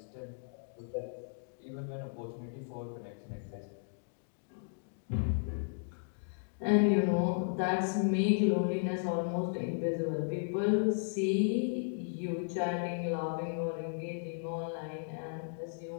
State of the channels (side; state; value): right; silent; digital silence